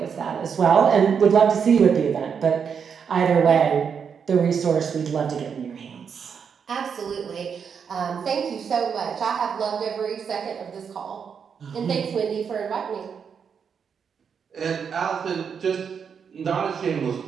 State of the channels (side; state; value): left; quieter; 6.8 dB